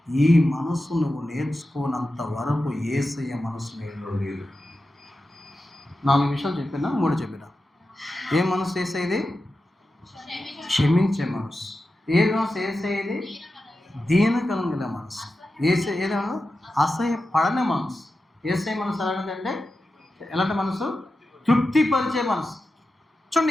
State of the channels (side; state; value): both; normal; correlation 0.92